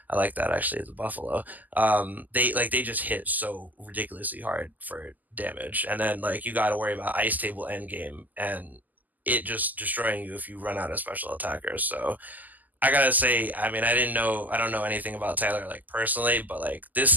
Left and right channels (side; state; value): left; late; 0.082 ms